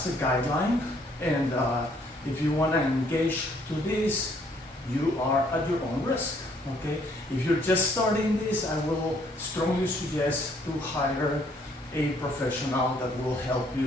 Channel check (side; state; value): both; normal; correlation 0.65